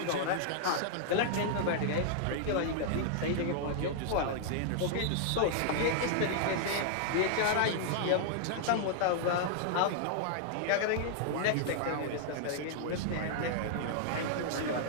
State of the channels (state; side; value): different; both; correlation -0.01